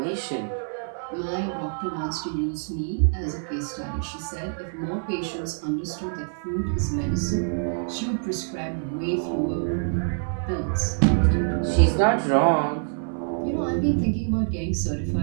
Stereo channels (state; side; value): silent; left; 58 dB below the other